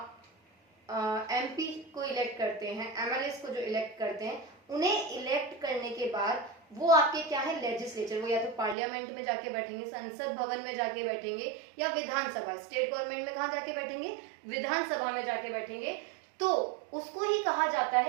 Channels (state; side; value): drops out; left; at 8.8 s